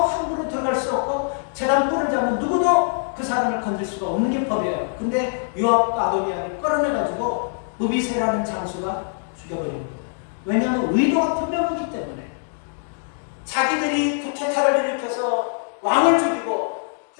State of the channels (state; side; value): silent; right; digital silence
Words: 함부로 들어갈 수 없고 제단 뿔을 잡으면 누구도 그 사람을 건질 수가 없는 게 법이에요. 근데 요압과 아도니아를 끌어내가지고 무비세라는 장수가 죽여버립니다. 왜냐하면 의도가 분명하기 때문에 자기들이 쿠데타를 일으켜서 왕을 죽이고